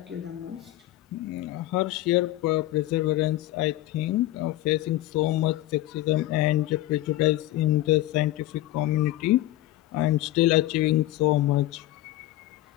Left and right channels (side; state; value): right; quieter; 15.7 dB